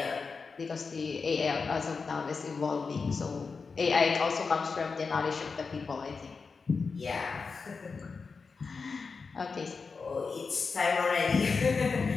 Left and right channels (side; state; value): right; quieter; 4.8 dB